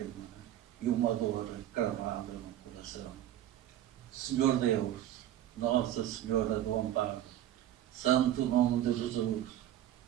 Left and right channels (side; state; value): left; quieter; 12.4 dB